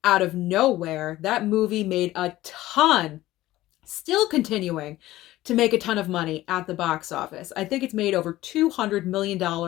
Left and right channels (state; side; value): quieter; right; 16.1 dB